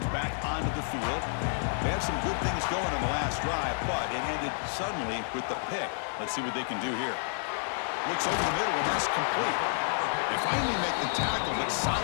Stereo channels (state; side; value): silent; right; digital silence